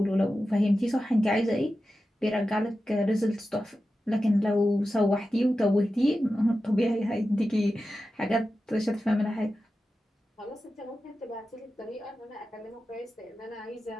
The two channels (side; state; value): both; normal; correlation 0.92